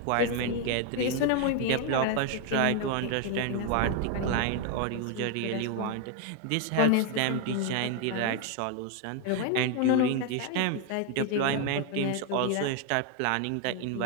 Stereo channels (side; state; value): both; different; correlation 0.01